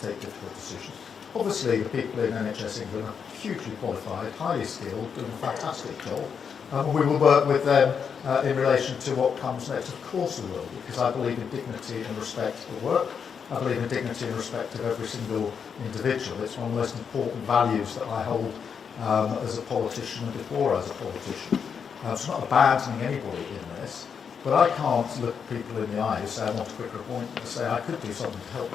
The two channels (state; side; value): quieter; right; 6.7 dB